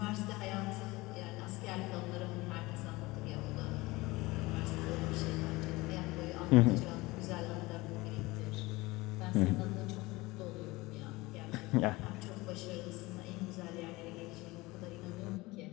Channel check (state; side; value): quieter; right; 21.4 dB